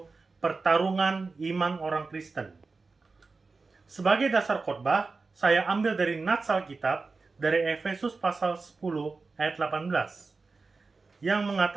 pertarungan iman orang Kristen. Sebagai dasar khotbah, saya ambil dari nats Alkitab dari Efesus pasal 10 ayat 18 yang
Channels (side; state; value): left; quieter; 4.1 dB